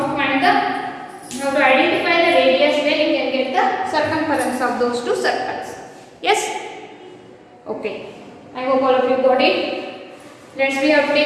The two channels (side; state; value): both; identical; correlation 1.00